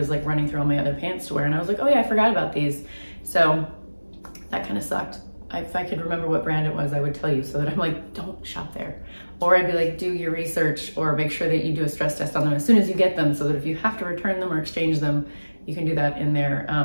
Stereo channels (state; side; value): inverted; both; correlation -1.00